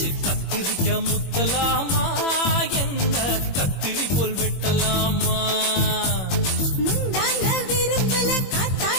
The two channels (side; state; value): right; late; 21 ms